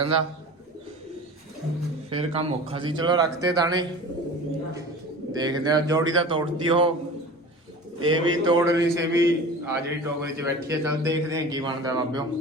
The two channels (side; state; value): both; normal; correlation 0.37